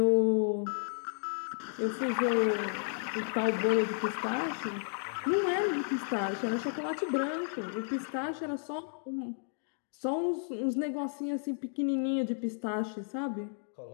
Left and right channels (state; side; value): silent; right; digital silence